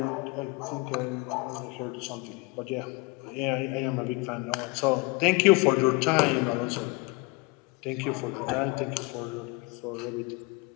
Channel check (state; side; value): quieter; right; 25.6 dB